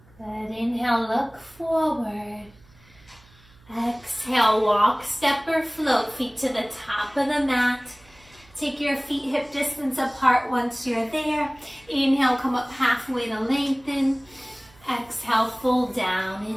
Good. Inhale, look forward. Exhale, walk, step or float, feet to the top of the mat. Take your feet hip distance apart once you're there. Inhale, come up halfway to lengthen. Exhale, fold down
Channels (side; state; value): right; noise; hum, 28 dB below the sound